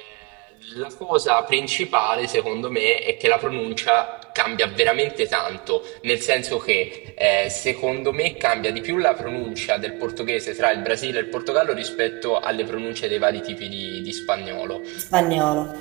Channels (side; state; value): left; quieter; 27.9 dB